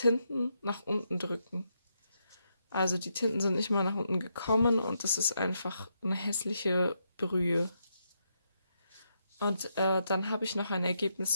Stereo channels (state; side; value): inverted; both; correlation -0.80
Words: nach unten drücken. Also die Tinten sind nicht mal nach unten gekommen und das ist einfach eine hässliche Brühe. Und dann habe ich noch ein